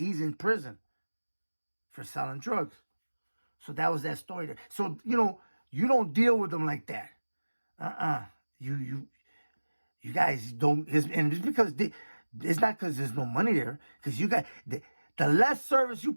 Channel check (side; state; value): both; inverted; correlation -1.00